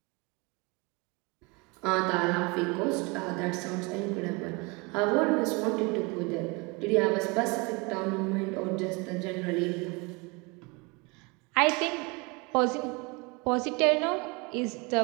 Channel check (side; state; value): left; quieter; 27.9 dB